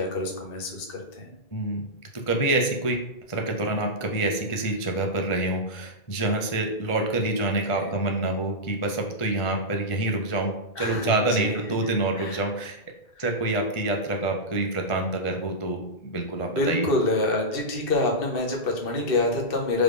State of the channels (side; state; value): right; late; 1.5 ms